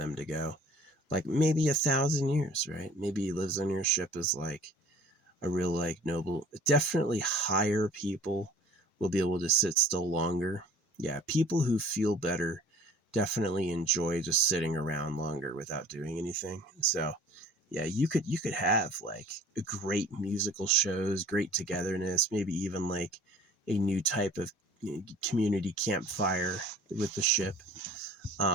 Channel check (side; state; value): both; normal; correlation 0.49